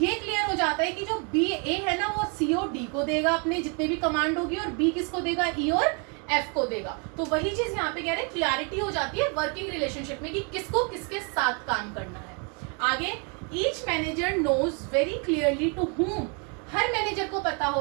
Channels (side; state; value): left; quieter; 35.9 dB